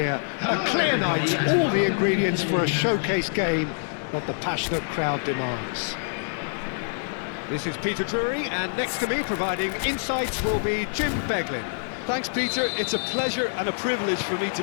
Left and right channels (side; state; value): right; silent; digital silence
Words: A clear night, all the ingredients for a showcase game that the passionate crowd demands. This is Peter Drury, and next to me providing insights will be Jim Beglin. Thanks, Peter. It's a pleasure and a privilege for me